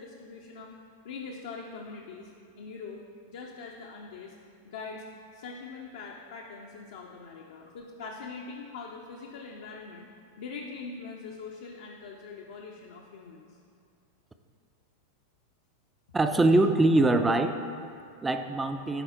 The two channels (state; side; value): normal; both; correlation 0.72